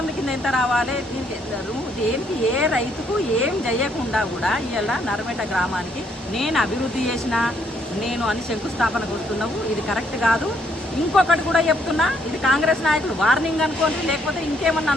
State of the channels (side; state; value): both; normal; correlation 0.70